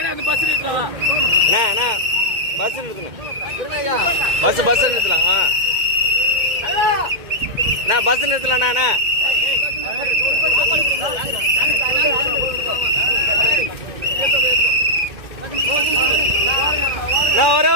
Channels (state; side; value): late; left; 2.1 ms